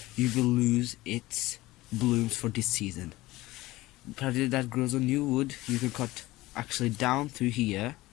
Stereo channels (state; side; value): quieter; right; 18.6 dB